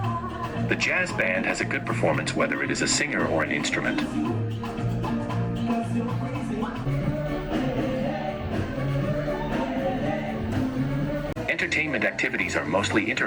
The jazz band has a good performance whether it is a singer or an instrument. Entertainment activities are mostly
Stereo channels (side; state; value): both; identical; correlation 1.00